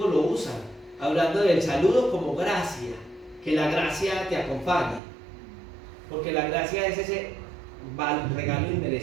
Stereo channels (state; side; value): drops out; left; at 5.0 s